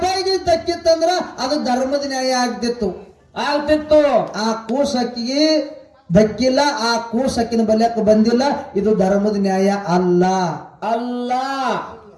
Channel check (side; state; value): both; identical; correlation 1.00